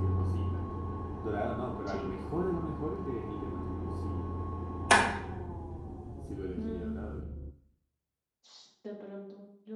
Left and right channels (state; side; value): identical; both; correlation 1.00